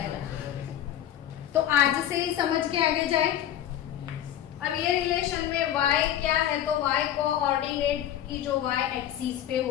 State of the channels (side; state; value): right; quieter; 11.2 dB